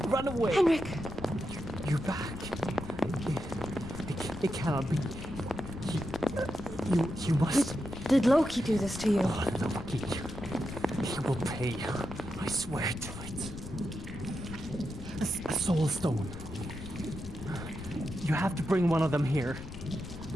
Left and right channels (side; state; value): left; noise; rumble, 11 dB below the sound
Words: Run away. Henrik! You're back. It cannot be. You must... Did Loki do this to you? Oh, Loki. He will pay. I swear to it. A soul stone. You have to bring one of them here.